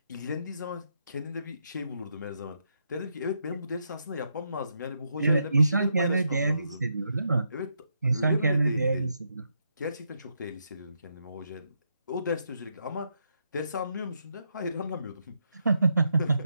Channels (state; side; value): inverted; both; correlation -0.80